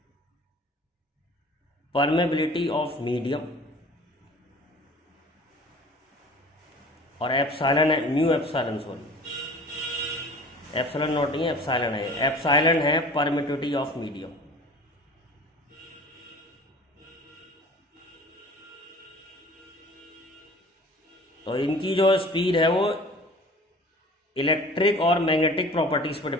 परमेबिलिटी ऑफ मीडियम और एप्सिलॉन है mu epsilon, sorry epsilon not नहीं है, एप्सिलॉन है। एप्सिलॉन है परमिटिविटी ऑफ मीडियम। तो इनकी जो स्पीड है वो इलेक्ट्रिक और मैग्नेटिक प्रॉपर्टीज पर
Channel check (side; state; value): both; normal; correlation 0.44